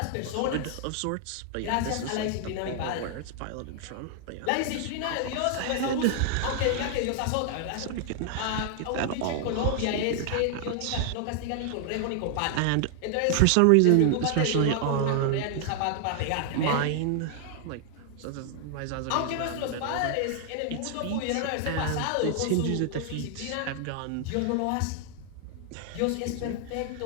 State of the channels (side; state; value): both; different; correlation -0.01